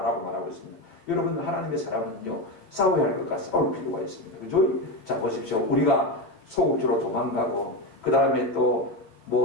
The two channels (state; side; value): late; right; 9.1 ms